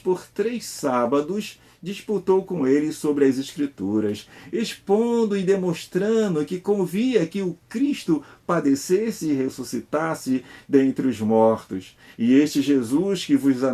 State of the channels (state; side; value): identical; both; correlation 1.00